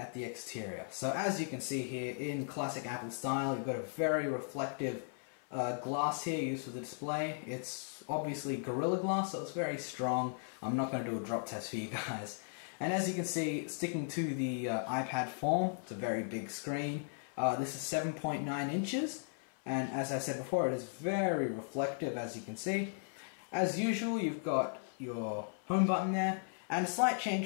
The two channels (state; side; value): silent; right; 53 dB below the other